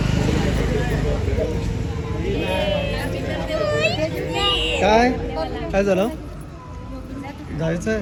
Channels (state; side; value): identical; both; correlation 1.00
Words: काय काय झालं जायचंय